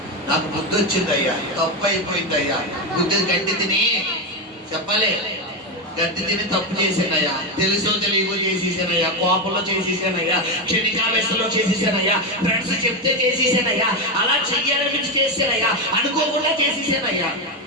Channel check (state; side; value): normal; both; correlation 0.10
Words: నాకు బుద్ధి వచ్చింది అయ్యా, తప్పు అయిపోయింది అయ్యా, బుద్ధి గడ్డి తిని చెప్పాలి, గడ్డి తిని తప్పు చేశానయ్యా, తెలుసో తెలియకో చేసేసానయ్యా, కోపంలో చేసేసానయ్యా, క్షణికావేశంలో చేసేసానయ్యా, ఫ్రెండ్స్ చెప్తే చేసేసానయ్యా, అలా చెయ్యాలనిపించి చేసానయ్యా, అనుకోకుండా చేసేసానయ్యా